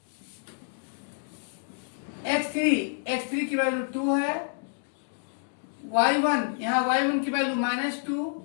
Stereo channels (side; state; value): right; silent; digital silence